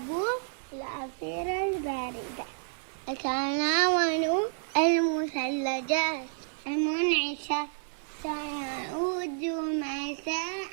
العصير البارد، أتناول المثلجات المنعشة، سيعود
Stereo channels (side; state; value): left; silent; 56 dB below the other